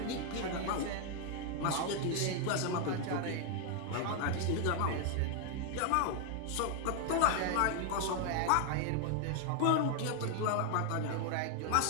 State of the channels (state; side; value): different; both; correlation 0.00